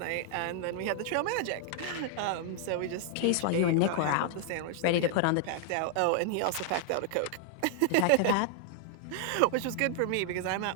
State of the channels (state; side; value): different; both; correlation 0.00